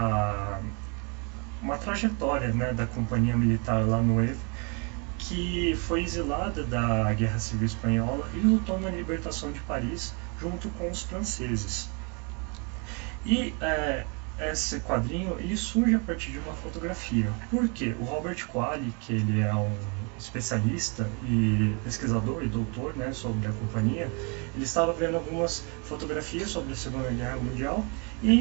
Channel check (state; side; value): quieter; left; 34.2 dB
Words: uma trajetória, né, da companhia militar La Nueve, que foi exilada da Guerra Civil Espanhola e lutou na libertação de Paris junto com os franceses. E esse quadrinho ele surge a partir de uma fotografia. Por quê? O Robert Qualley, que ele é um especialista e pesquisador e doutor, né, sobre a companhia, ele estava vendo algumas fotografias sobre a Segunda Guerra Mundial